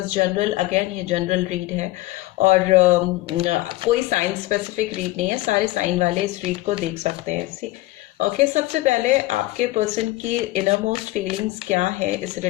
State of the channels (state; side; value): quieter; right; 18.4 dB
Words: जनरल, अगेन ये जनरल रीड है और कोई साइन स्पेसिफिक रीड नहीं है। सारे साइन वाले इस रीड को देख सकते हैं। ओके, सबसे पहले आपके पर्सन की इनर मोस्ट फीलिंग्स क्या है इस